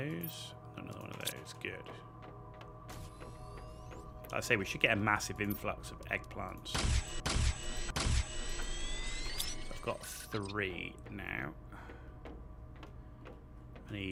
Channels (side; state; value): both; identical; correlation 1.00